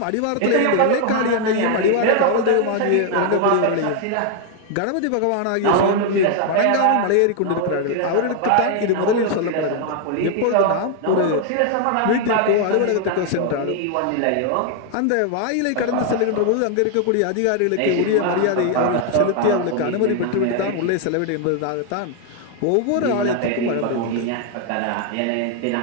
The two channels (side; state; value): both; different; correlation 0.00